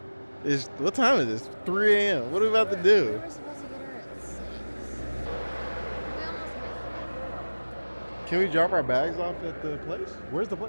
What time is this? 3 a.m. What are we about to do? We were supposed to get her at 6. We almost missed Can we drop our bags off at the place? Where's the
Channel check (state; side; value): inverted; both; correlation -1.00